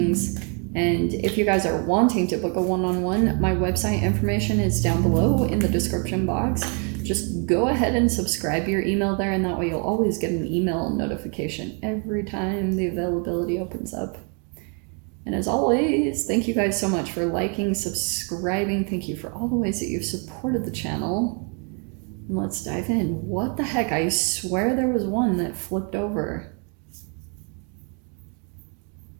And if you guys are wanting to book a one-on-one, my website information is down below in the description box. Just go ahead and subscribe your email there, and that way you'll always get an email notification every time the availability opens up. And as always, thank you guys so much for liking, subscribing. Thank you for all the ways that you've supported the channel. And let's dive in. What the heck? I swear there was one that flipped over.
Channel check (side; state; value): left; quieter; 38.0 dB